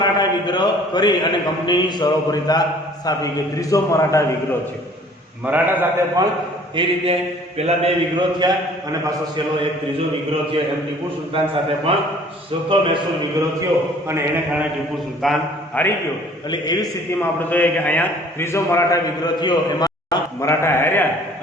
વિગ્રહ કરી અને કંપનીની સરોપરિતા સ્થાપી. કે ત્રીજો મરાઠા વિગ્રહ છે. મરાઠા સાથે પણ એ રીતે પેલા બે વિગ્રહ થયા અને પાછો છેલ્લો એક ત્રીજો વિગ્રહ થયો. એમ ટીપુ સુલતાન સાથે પણ ચોથો મૈસૂર વિગ્રહ થયો અને એને કારણે ટીપુ સુલતાન હારી ગયો. એટલે એવી સ્થિતિમાં આપણે જોઈએ કે અહીંયા ત્રીજો મરાઠા વિગ્રહ થયો, એમાં મરાઠા હાર્યા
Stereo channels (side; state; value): both; normal; correlation 0.53